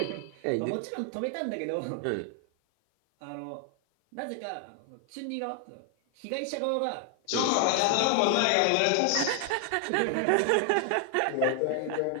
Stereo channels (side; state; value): both; different; correlation 0.00